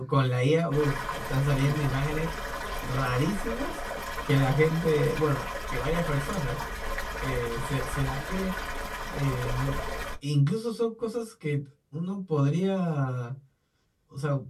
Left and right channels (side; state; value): both; identical; correlation 1.00